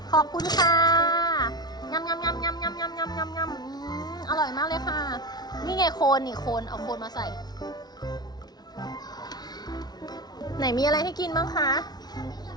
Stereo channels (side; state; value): right; late; 0.19 ms